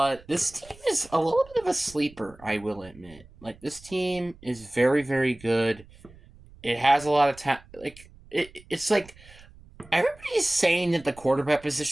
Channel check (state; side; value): noise; right; rumble, 23 dB below the sound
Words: this team is a little bit of a sleeper, I will admit. Like, this team is very, very good. It has a lot of talent. It's like everybody's saying that the quarterback